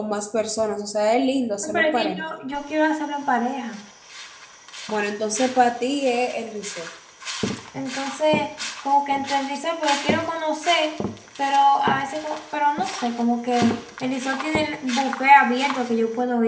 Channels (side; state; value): both; identical; correlation 1.00